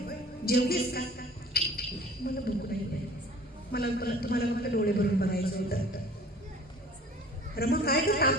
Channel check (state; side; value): normal; both; correlation 0.48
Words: जेवलीस का? मला भूक नाही, मला तुम्हाला फक्त डोळे भरून बघायचं होतं. रमा काय ग,